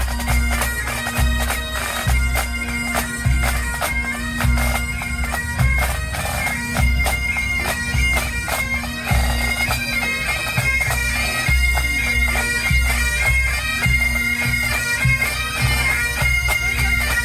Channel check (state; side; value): identical; both; correlation 1.00